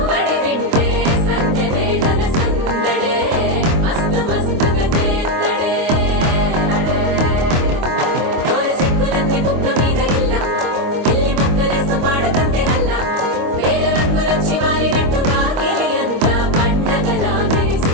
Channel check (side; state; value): left; late; 25 ms